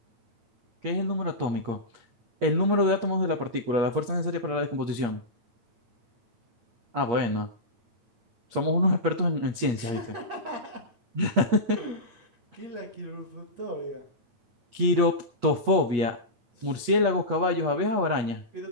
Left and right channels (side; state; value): left; late; 8.5 ms